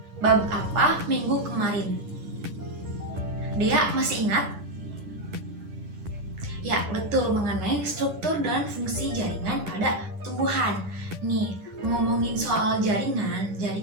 bab apa minggu kemarin? Dia masih ingat? Ya, betul, mengenai struktur dan fungsi jaringan pada tumbuhan. Nih, ngomongin soal jaringan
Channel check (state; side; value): late; left; 11 ms